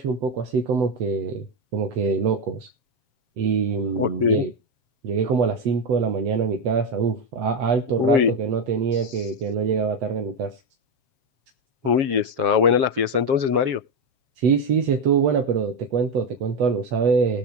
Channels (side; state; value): left; late; 7.4 ms